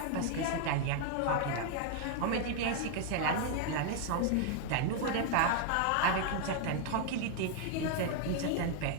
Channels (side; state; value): both; different; correlation 0.00